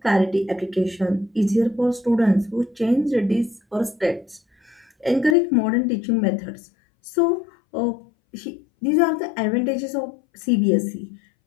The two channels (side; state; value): right; drops out; at 5.4 s